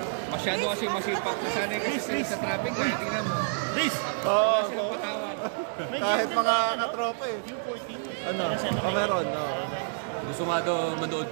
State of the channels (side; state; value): left; silent; digital silence